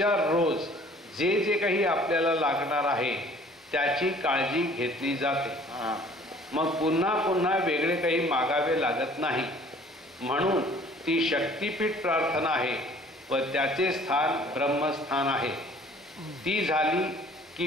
रोज जे जे काही आपल्याला लागणार आहे त्याची काळजी घेतली जाते. मग पुन्हा पुन्हा वेगळे काही मागावे लागत नाही. म्हणून ती शक्तिपीठ प्रार्थना आहे व त्याचे स्थान ब्रह्मस्थान आहे. ती झाली की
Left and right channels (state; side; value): normal; both; correlation 0.53